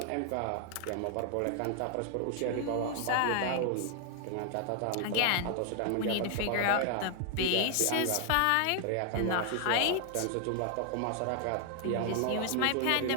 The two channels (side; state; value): both; different; correlation 0.00